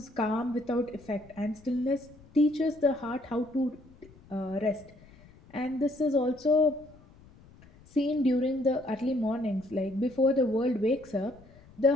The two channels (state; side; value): noise; left; rumble, 25 dB below the sound